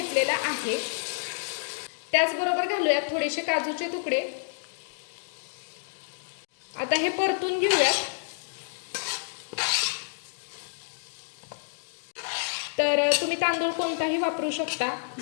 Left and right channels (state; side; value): silent; right; digital silence